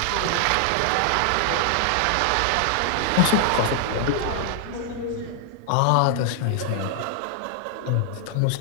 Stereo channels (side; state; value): both; different; correlation 0.00